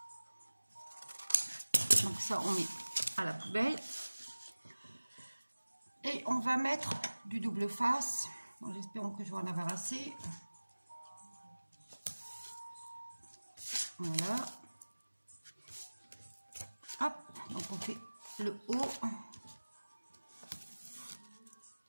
Donc ça, on met à la poubelle. Et on va mettre du double face. J'espère que je vais en avoir assez. Voilà. Hop. Donc on fait le haut.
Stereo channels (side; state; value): both; inverted; correlation -1.00